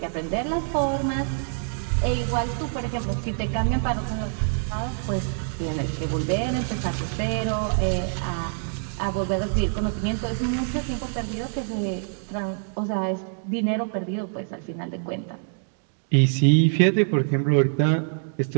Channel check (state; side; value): silent; left; digital silence